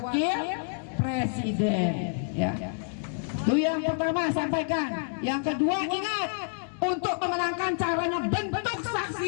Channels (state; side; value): silent; right; digital silence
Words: presiden, ya. Itu yang pertama sampaikan. Yang kedua ingat, untuk memenangkan caranya bentuk